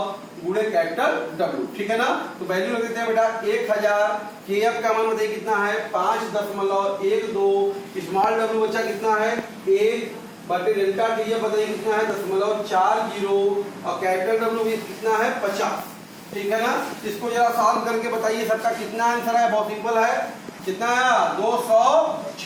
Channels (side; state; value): both; identical; correlation 1.00